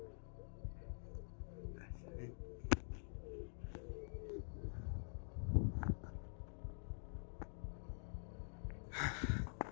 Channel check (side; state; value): right; silent; digital silence